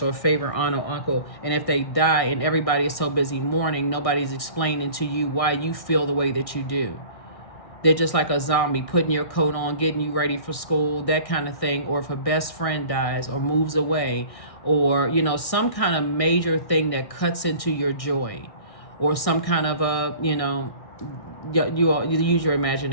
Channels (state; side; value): late; right; 1.6 ms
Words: or a favorite aunt or uncle, and if they die and everybody is so busy mourning, nobody's explaining to you why you feel the way that you do. They're just like a zombie, putting your coat on, getting you ready for school, that kind of thing. Or if a best friend dies or moves away, or, some kind of major thing that cuts into your joy, or some kind of you use your